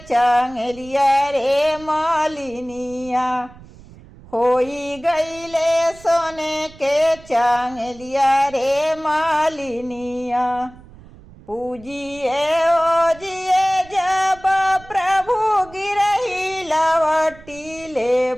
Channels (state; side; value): noise; right; rumble, 21 dB below the sound